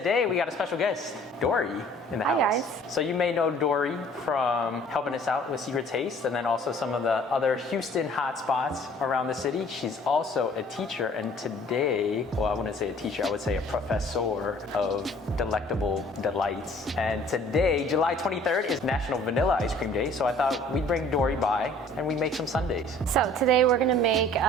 we got a special guest, Dory, in the house. Hi, guys. So you may know Dory from helping us out with Secret Taste, and then also some of the other Houston hotspots around the city. She's also a teacher, and today, well, I wouldn't say a teacher, I would say a professor of delectable delights. And today, July 23rd, is National Vanilla Ice Cream Day, so I thought we'd bring Dory by and we'd make some sundaes. So today we're gonna make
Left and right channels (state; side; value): normal; both; correlation 0.53